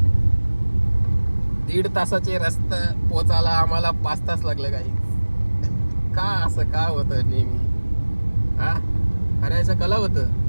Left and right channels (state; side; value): inverted; both; correlation -1.00